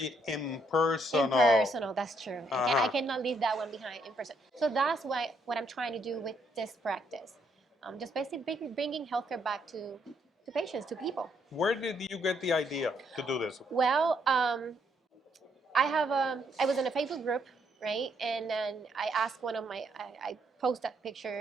impersonal. Impersonal, that's true. I cannot leave that one behind, in person. So that's what I'm trying to do with this practice. Just basically bringing healthcare back to patients, to people. Where did you get the idea to do this? Well, I was in a Facebook group, right? And then I asked I post that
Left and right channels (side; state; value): both; normal; correlation 0.73